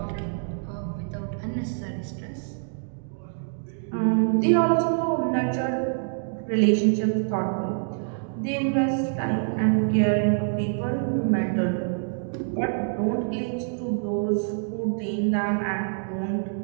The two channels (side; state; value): left; silent; digital silence